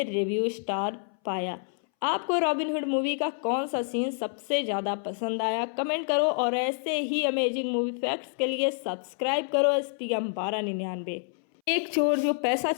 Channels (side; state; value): right; silent; 59 dB below the other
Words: रिव्यू स्टार पाया। आपको रॉबिनहुड मूवी का कौन सा सीन सबसे ज़्यादा पसंद आया, कमेंट करो और ऐसे ही अमेजिंग मूवी फैक्ट्स के लिए सब्सक्राइब करो SPM 1299। एक चोर जो पैसा